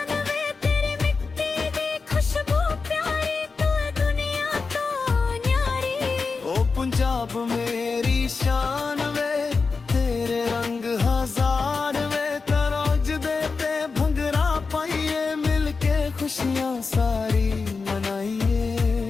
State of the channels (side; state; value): right; quieter; 4.5 dB